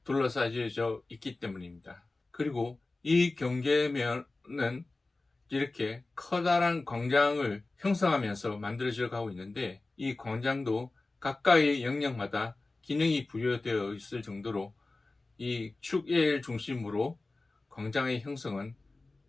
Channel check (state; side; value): quieter; right; 3.2 dB